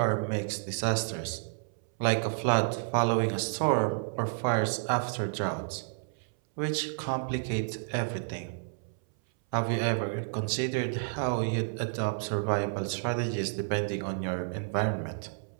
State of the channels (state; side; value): silent; left; 57 dB below the other